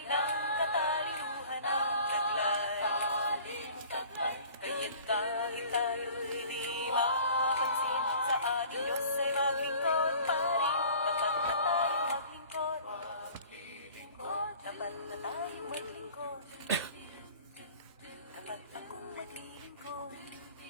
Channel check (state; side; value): inverted; both; correlation -0.48